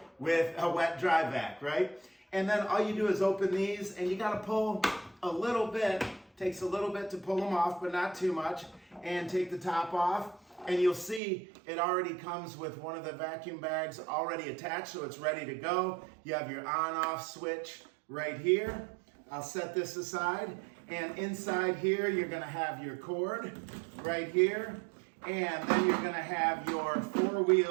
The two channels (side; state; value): left; drops out; at 11.2 s